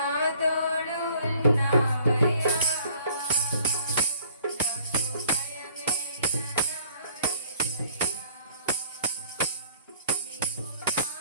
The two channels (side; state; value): both; inverted; correlation -0.56